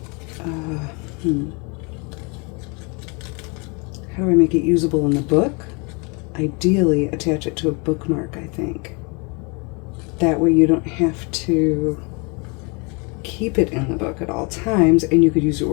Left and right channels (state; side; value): quieter; right; 31.6 dB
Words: How do I make it usable in the book? Ideally, attach it to a bookmark, I think. That way you don't have to keep it in the book at all times, and you could use it